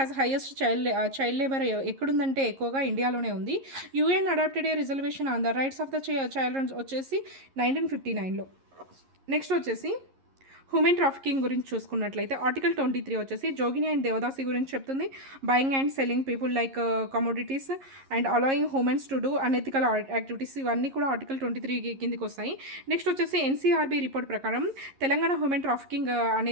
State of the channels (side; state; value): left; late; 11 ms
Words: highest child labour ఎక్కడుందంటే ఎక్కువగా ఇండియాలోనే ఉంది. UN adopted a reservation on the rights of the child వచ్చేసి 1959లో. నెక్స్ట్ వచ్చేసి హ్యూమన్ ట్రాఫికింగ్ గురించి చూసుకున్నట్లయితే ఆర్టికల్ 23 వచ్చేసి జోగిని అండ్ దేవదాసి గురించి చెప్తుంది. Buying and selling people like commodities and allowing humans to do unethical activities, ఇవన్నీ కూడా ఆర్టికల్ 23 కిందికి వస్తాయి. నెక్స్ట్ వచ్చేసి ఎన్సీఆర్బీ రిపోర్ట్ ప్రకారం తెలంగాణ హ్యూమన్ ట్రాఫికింగ్